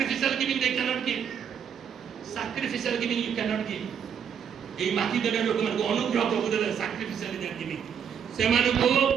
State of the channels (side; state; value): left; quieter; 7.8 dB